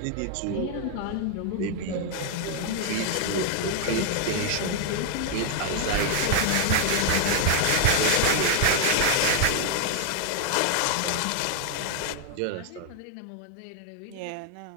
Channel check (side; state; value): both; different; correlation 0.00